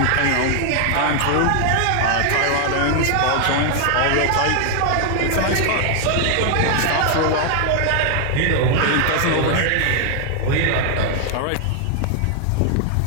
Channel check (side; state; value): both; different; correlation 0.00